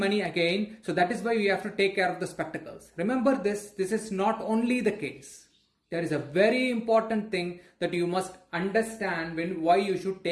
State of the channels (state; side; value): identical; both; correlation 1.00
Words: again. So that is why we have to take care of the spectacles. Remember this is not only the case. There is a very important thing that you must understand why you should